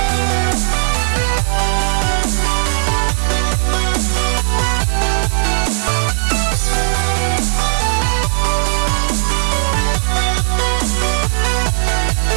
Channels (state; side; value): silent; left; 57 dB below the other